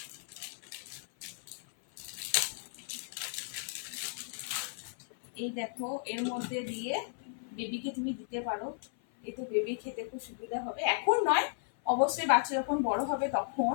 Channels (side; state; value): right; silent; 55 dB below the other